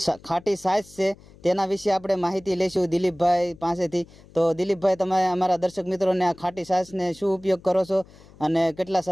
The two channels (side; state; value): left; noise; hum, 24 dB below the sound